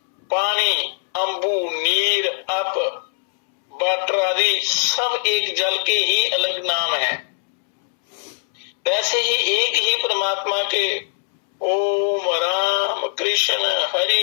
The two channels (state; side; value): silent; right; 65 dB below the other